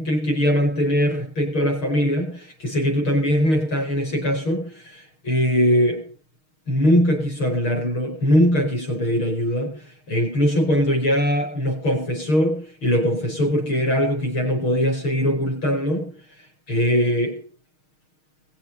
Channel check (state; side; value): late; right; 6.4 ms